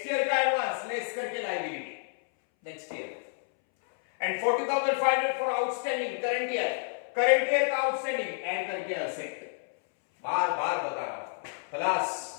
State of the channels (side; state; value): right; silent; 58 dB below the other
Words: एडवांस, लेस करके liability next year. And 40,500 for outstanding current year का आउटस्टैंडिंग, ऐड करके असेट। बार बार बता रहा हूं, क्लास